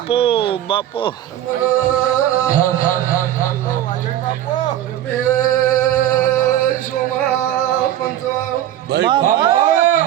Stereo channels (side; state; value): left; quieter; 12.2 dB